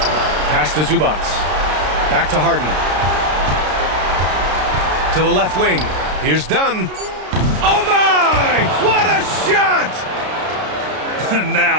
Pass to Zubac. Back to Harden. To the left wing. Here's Dunn. Oh my! What a shot!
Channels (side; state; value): left; late; 33 ms